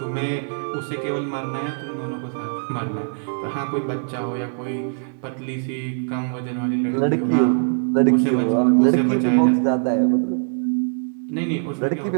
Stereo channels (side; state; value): left; silent; digital silence